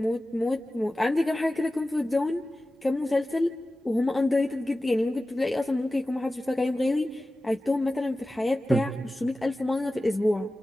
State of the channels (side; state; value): both; normal; correlation 0.95